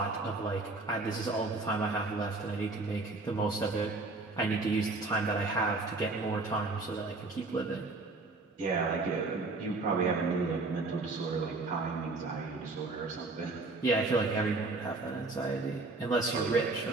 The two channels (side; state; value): left; quieter; 3.4 dB